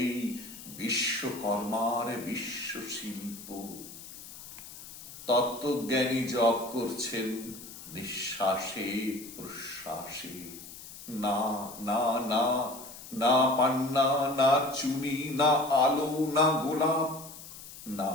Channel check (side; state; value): left; noise; hiss, 14 dB below the sound